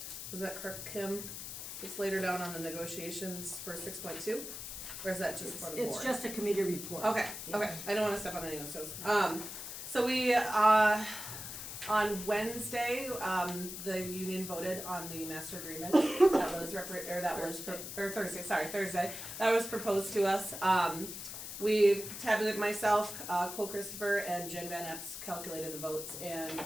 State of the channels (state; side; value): noise; left; hiss, 8 dB below the sound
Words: was that Kirk Kim? It's later down on the negotiations for 6.2, or is that just for the board? It's just a committee report. Okay, Yeah. okay, I don't wanna step on any of those toes. So we, On Wednesday, the union voted on the master agreement that was Thursday, that was proposed to us. We tabulated myself, Cole Christopher, and Jen Van Epps calculated the votes, and